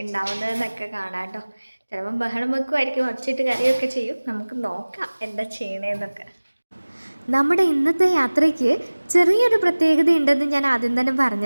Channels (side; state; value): both; inverted; correlation -1.00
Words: ഉണ്ടാവുന്നതെന്നൊക്കെ കാണാം കേട്ടോ. ചിലപ്പം ബഹളം വെക്കുമായിരിക്കും, ഒച്ചയിട്ട് കരയൊക്കെ ചെയ്യും. നമുക്ക് നോക്കാം എന്താ ചെയ്യണേന്നൊക്കെ. നമ്മുടെ ഇന്നത്തെ യാത്രയ്ക്ക് ചെറിയൊരു പ്രത്യേകത ഉണ്ടെന്ന് ഞാൻ ആദ്യം തന്നെ